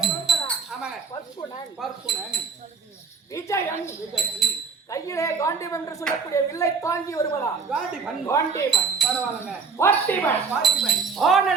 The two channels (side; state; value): left; quieter; 5.1 dB